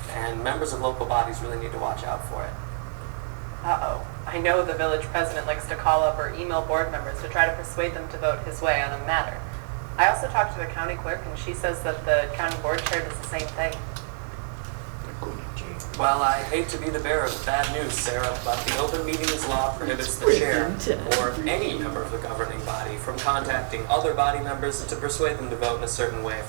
and members of local bodies really need to watch out for it. Uh-oh. I know the village president likes to call up or email board members to try to persuade them to vote his way on a matter. I also talked to the county clerk, and she says that the county board chair does the same thing. Well, I hate to be the bearer of bad news, Sarah, but the open meetings law prohibits the chair or any member of the governing body from contacting other body members to persuade them to vote in a certain way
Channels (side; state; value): left; silent; digital silence